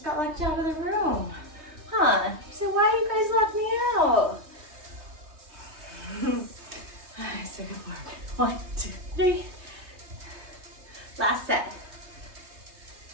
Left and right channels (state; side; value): late; left; 3.2 ms